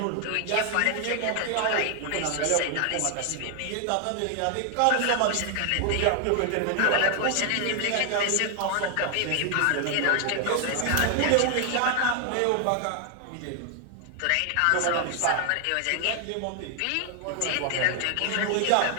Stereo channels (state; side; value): different; both; correlation 0.00